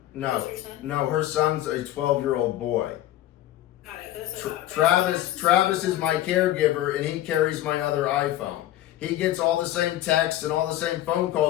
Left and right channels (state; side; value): quieter; right; 13.8 dB